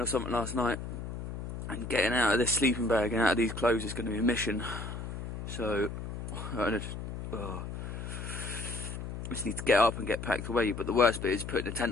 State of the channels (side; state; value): left; noise; hum, 7 dB below the sound